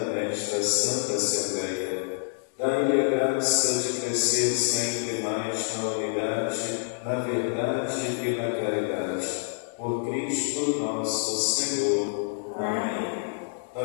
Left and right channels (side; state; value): right; silent; digital silence